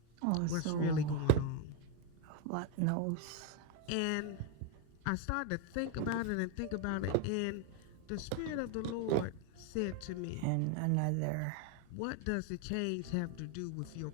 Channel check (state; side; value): different; both; correlation 0.02